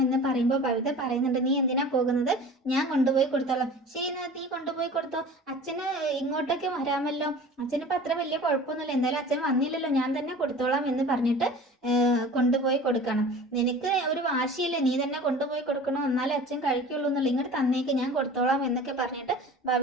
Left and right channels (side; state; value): both; normal; correlation 0.40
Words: പറയുമ്പോൾ ബബിത പറയുന്നുണ്ട്, നീ എന്തിനാ പോകുന്നത്, ഞാൻ കൊണ്ടുപോയി കൊടുത്തോളാം. ശരി, നീ കൊണ്ടുപോയി കൊടുത്തോ, അച്ഛന് ഇങ്ങോട്ടൊക്കെ വരാമല്ലോ, അച്ഛനിപ്പോൾ അത്ര വലിയ കുഴപ്പമൊന്നുമില്ല, എന്തായാലും അച്ഛൻ വന്നില്ലല്ലോ, ഞാൻ തന്നെ കൊടുത്തോളാം എന്ന് പറഞ്ഞിട്ട് കൊണ്ടുപോയി കൊടുക്കണം. നിനക്ക് ഒരു വാശിയില്ലേ, നീ തന്നെ കൊണ്ടുപോയി കൊടുക്കണം, എന്നാലേ അച്ഛൻ കഴിക്കുള്ളൂ എന്നുള്ള, ഇങ്ങോട്ട് തന്നേക്ക്, ഞാൻ കൊടുത്തോളാം എന്നൊക്കെ പറഞ്ഞിട്ട്